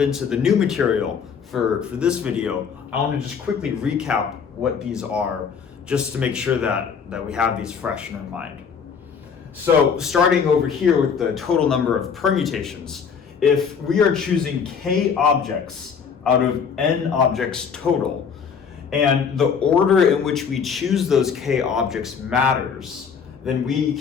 the new material for this video, I want to just quickly recap what these are, just to make sure that we have these fresh in our mind. So starting over here with the total number of permutations, if we are choosing k objects out of n objects total, and the order in which we choose those k objects matters, then we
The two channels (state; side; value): quieter; right; 6.5 dB